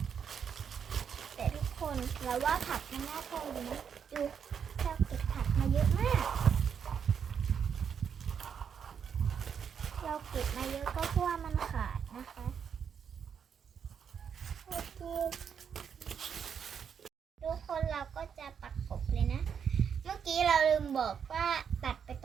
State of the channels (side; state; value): left; quieter; 7.4 dB